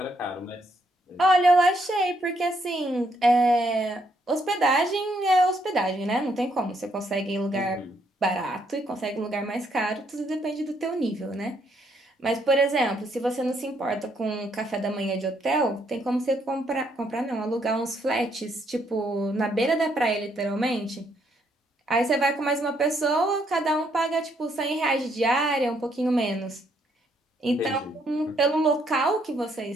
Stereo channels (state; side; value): normal; both; correlation 0.72